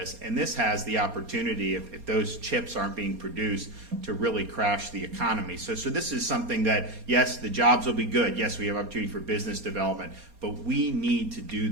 and this has the opportunity, if those chips aren't being produced, to really crash the economy. So this is something that, yes, the jobs will be good. Yes, we have opportunity for business development, but we need to do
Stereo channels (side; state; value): left; late; 4.3 ms